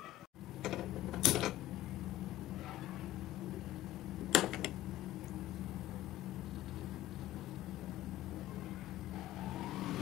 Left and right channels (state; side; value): quieter; right; 14.8 dB